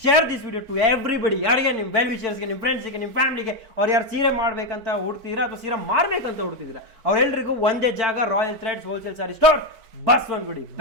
share this video to everybody. ಯಾರಿಗೆ ನಿಮ್ಮ ವೆಲ್ ವಿಷರ್ಸ್ಗೆ, ನಿಮ್ಮ ಫ್ರೆಂಡ್ಸ್ಗೆ, ನಿಮ್ಮ ಫ್ಯಾಮಿಲಿಗೆ, ಅವ್ರು ಯಾರು ಸೀರೆ ಮಾಡ್ಬೇಕಂತ ಹುಡ್ತಿದ್ದೀರಾ ಅಥವಾ ಸೀರೆ ಮಾರ್ಬೇಕಂತ ಹುಡ್ತಿದ್ದೀರಾ, ಅವ್ರೆಲ್ರಿಗೂ ಒಂದೇ ಜಾಗ, Royal Threads wholesale sari store, Basavanagudi,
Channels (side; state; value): left; late; 4.5 ms